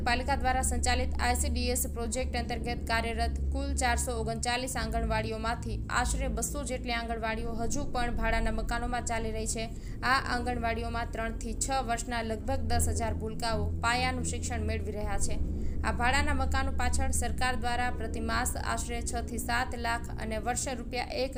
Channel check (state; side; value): identical; both; correlation 1.00